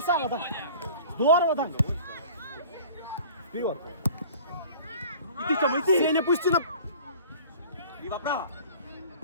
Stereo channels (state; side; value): inverted; both; correlation -0.45